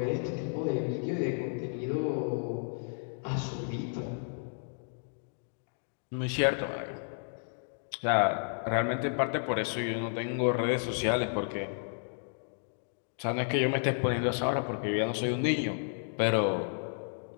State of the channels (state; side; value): silent; right; digital silence